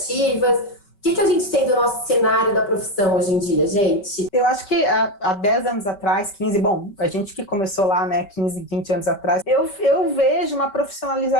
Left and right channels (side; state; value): right; late; 5.2 ms